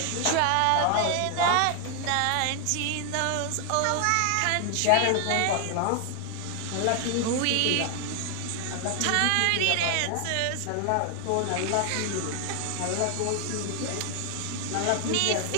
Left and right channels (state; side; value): different; both; correlation 0.00